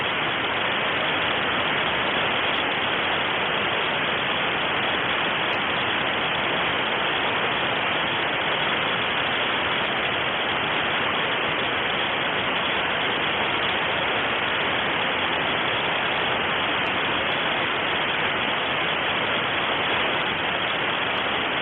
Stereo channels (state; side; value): identical; both; correlation 1.00